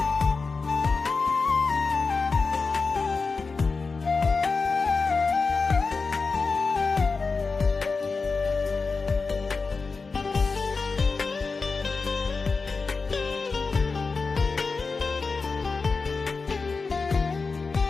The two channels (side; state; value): right; quieter; 4.4 dB